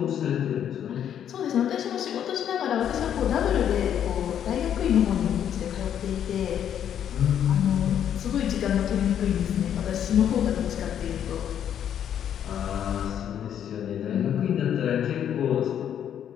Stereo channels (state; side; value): quieter; right; 9.5 dB